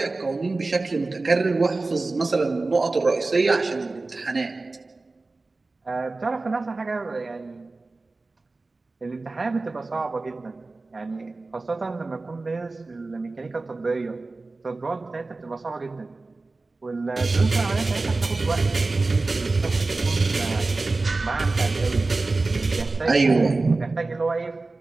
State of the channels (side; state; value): left; quieter; 3.4 dB